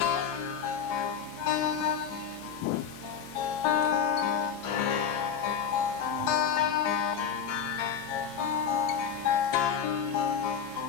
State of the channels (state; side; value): quieter; right; 7.7 dB